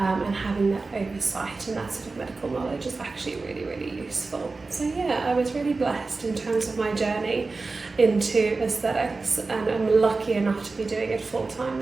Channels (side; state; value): left; quieter; 3.8 dB